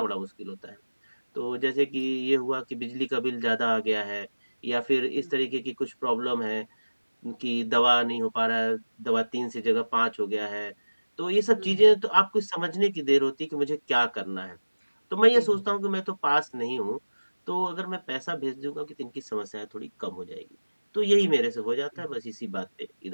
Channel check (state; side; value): inverted; both; correlation -1.00